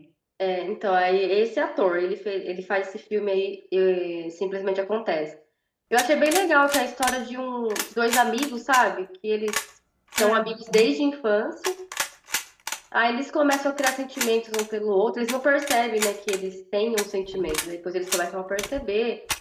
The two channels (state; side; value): identical; both; correlation 1.00